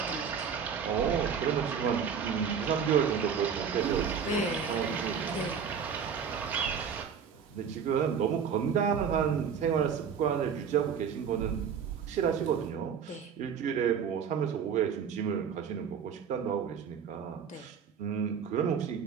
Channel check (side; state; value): left; quieter; 7.1 dB